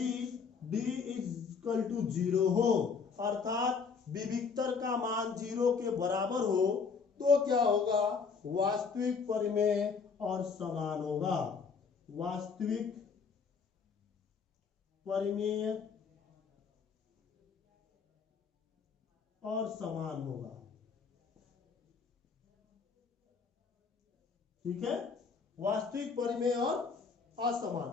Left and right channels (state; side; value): quieter; right; 5.5 dB